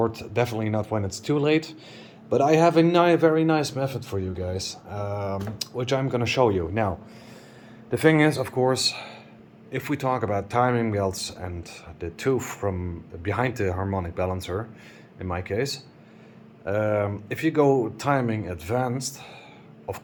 definitely not when it's too late, but I have a very nice method for you guys, which I'm gonna show you. Now, the thing is, of course, if we talk about timing belts and the tooth from behind the harmonic balancer, in my case, if you go timing advanced, of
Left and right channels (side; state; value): both; identical; correlation 1.00